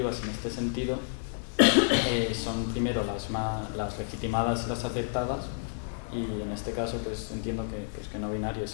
en este sentido son primero las legitimadas y las aceptadas, y en este caso pues entiendo que no binarios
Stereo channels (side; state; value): right; silent; digital silence